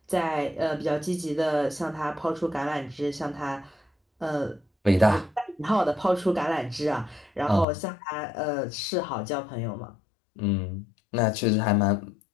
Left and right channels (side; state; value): right; drops out; at 7.7 s